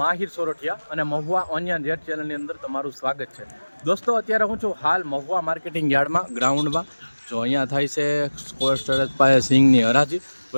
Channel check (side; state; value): both; inverted; correlation -1.00